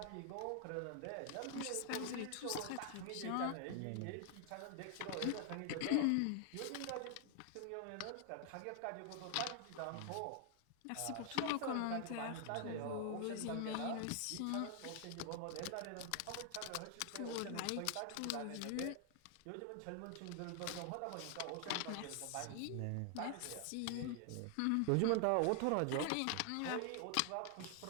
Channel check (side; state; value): both; different; correlation 0.00